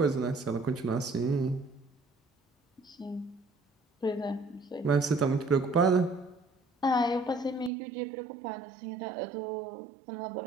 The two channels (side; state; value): left; drops out; at 7.7 s